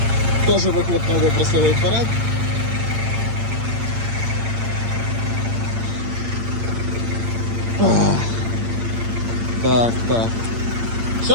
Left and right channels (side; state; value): left; late; 8.8 ms